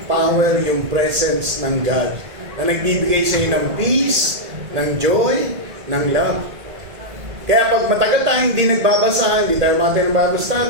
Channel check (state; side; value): late; left; 1.8 ms